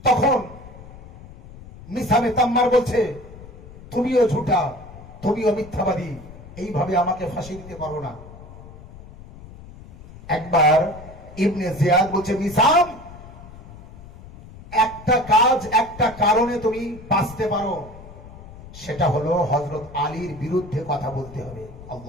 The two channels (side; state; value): left; noise; rumble, 17 dB below the sound